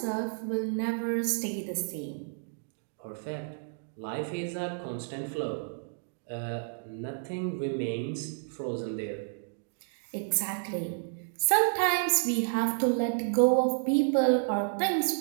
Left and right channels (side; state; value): left; silent; digital silence